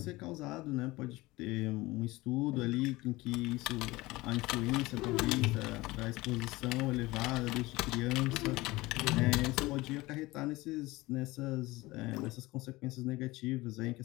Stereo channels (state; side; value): quieter; right; 20.5 dB